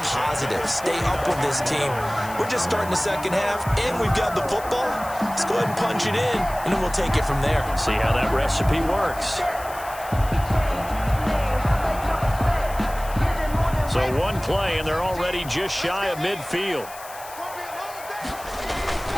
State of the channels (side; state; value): left; noise; hiss, 16 dB below the sound